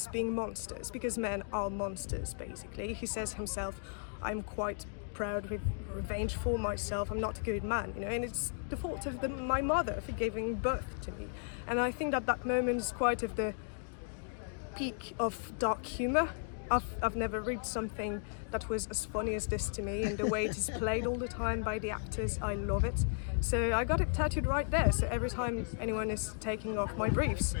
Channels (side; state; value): right; silent; digital silence